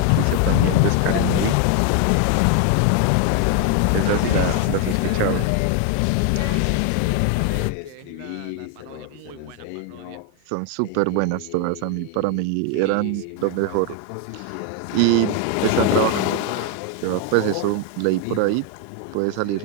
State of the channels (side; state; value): both; different; correlation 0.01